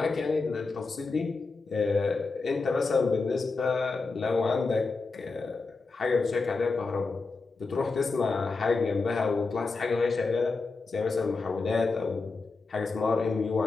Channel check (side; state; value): right; quieter; 4.0 dB